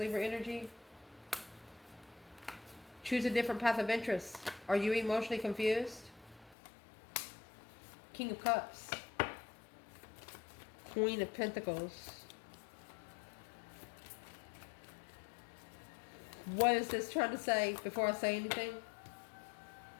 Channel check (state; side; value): drops out; right; at 6.6 s